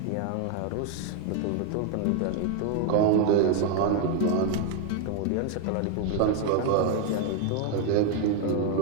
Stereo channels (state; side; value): different; both; correlation 0.00